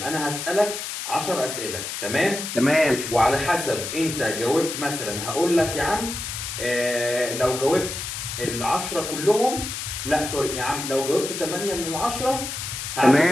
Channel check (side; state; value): left; noise; hiss, 6 dB below the sound